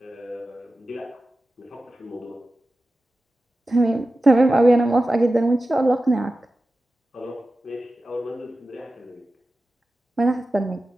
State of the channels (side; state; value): both; normal; correlation 0.94